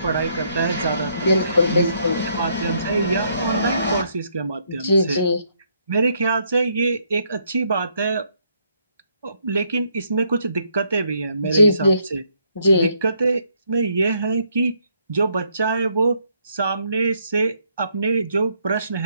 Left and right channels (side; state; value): both; inverted; correlation -0.72